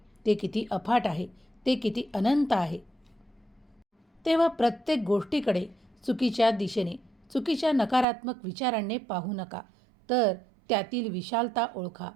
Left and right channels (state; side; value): drops out; left; at 8.1 s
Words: ते किती अफाट आहे, ते किती अनंत आहे. तेव्हा प्रत्येक गोष्टीकडे चुकीच्या दिशेने, चुकीच्या नकारात्मक विचारांनी पाहू नका, तर त्यातील विशालता ओळखा